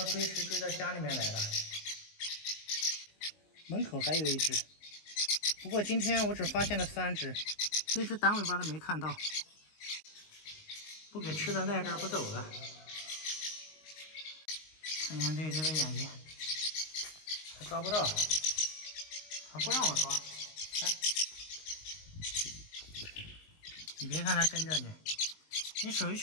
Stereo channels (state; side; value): late; right; 19 ms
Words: 追食追到家里面来了。门口还有一只，不过今天我只发现了3只，那只短尾巴的没看到。不给吃的赖这儿不走了。看看这只的眼睛，还抓不到，还不让我抓。看，你别看它跟着你，你手一